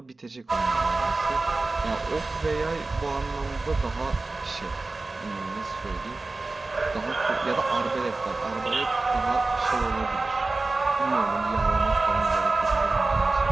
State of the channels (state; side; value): quieter; left; 3.4 dB